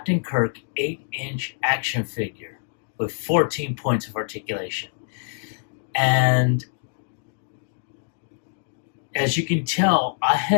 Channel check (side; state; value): right; silent; digital silence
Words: Kirk 8-inch action figure with 14 points of articulation. And as you can tell, I